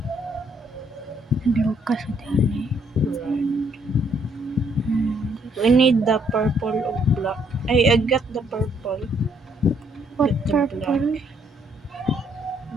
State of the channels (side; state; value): both; normal; correlation 0.69